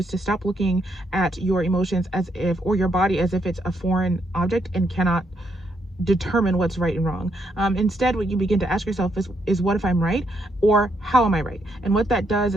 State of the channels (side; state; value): both; normal; correlation 0.75